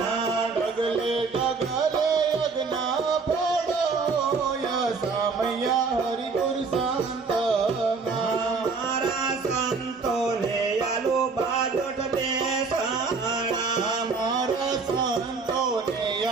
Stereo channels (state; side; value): quieter; left; 4.6 dB